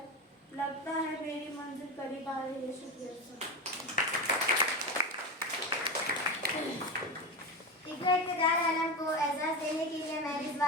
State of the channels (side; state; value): both; normal; correlation 0.19